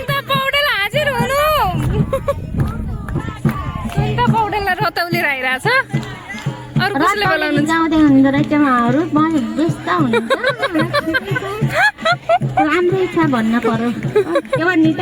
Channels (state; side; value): identical; both; correlation 1.00